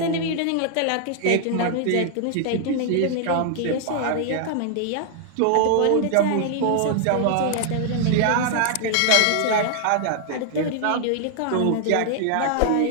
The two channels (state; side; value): different; both; correlation 0.00